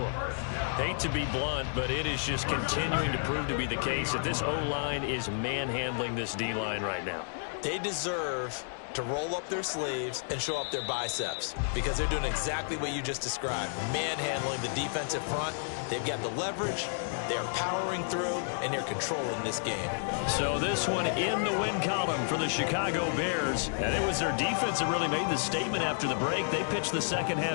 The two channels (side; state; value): right; silent; digital silence